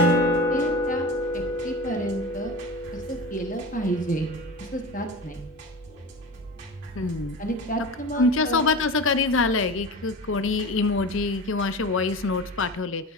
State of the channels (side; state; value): both; normal; correlation 0.31